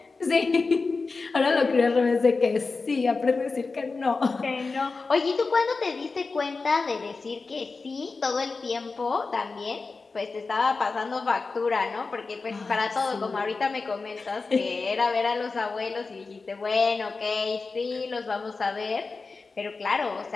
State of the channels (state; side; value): quieter; right; 4.1 dB